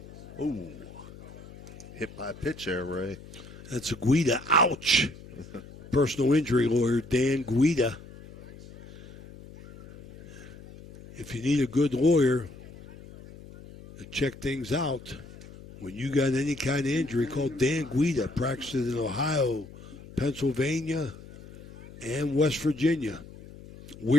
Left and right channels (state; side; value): noise; left; hum, 17 dB below the sound